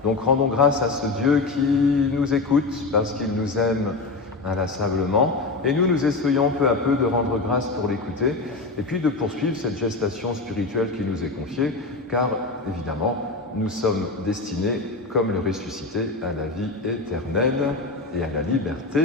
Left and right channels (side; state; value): right; quieter; 3.6 dB